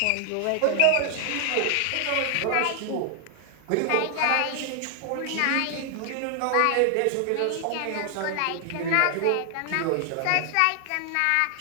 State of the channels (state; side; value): different; both; correlation 0.00